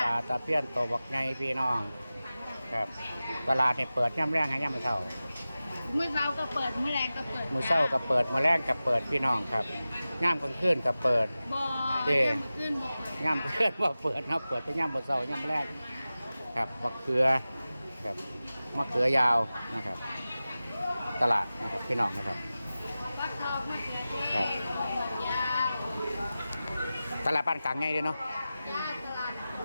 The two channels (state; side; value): inverted; both; correlation -0.95